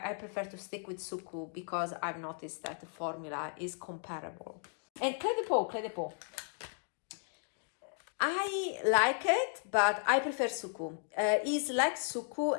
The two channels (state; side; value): silent; right; 54 dB below the other